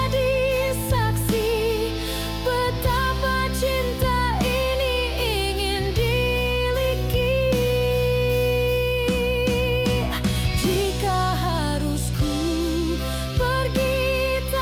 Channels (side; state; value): both; identical; correlation 1.00